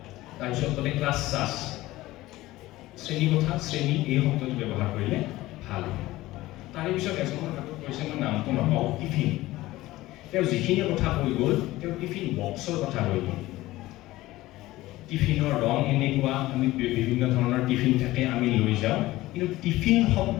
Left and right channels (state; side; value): quieter; right; 17.5 dB